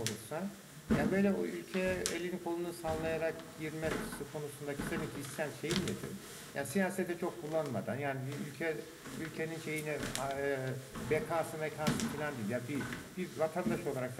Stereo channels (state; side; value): identical; both; correlation 1.00